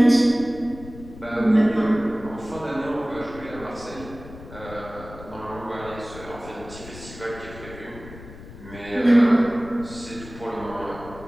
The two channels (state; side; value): noise; left; rumble, 16 dB below the sound